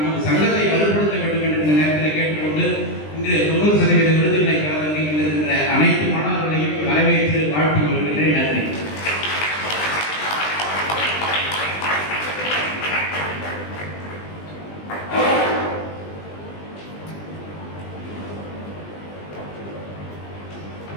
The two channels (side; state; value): right; late; 20 ms